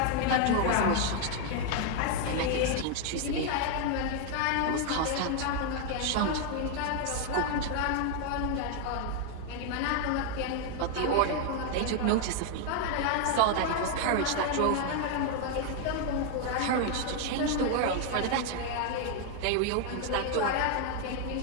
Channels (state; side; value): different; both; correlation 0.00